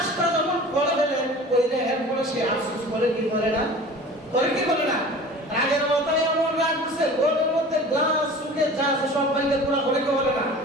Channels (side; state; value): both; normal; correlation 0.41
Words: যখন করে ফেলে কইলে এরপরে সে আফসোস করে কি করে না, রাগের মাথায় এমন রাগ উঠছে ঘরের মধ্যে গ্লাস সুকে যা আছে সব ভাঙলে পুরা করে কে বলে না,